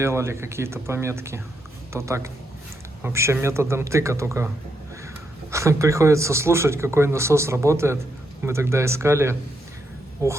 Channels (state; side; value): normal; both; correlation 0.80